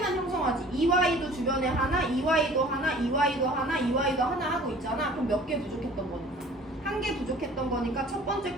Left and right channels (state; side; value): normal; both; correlation 0.49